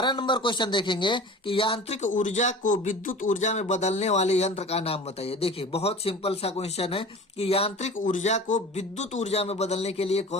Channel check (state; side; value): normal; both; correlation 0.38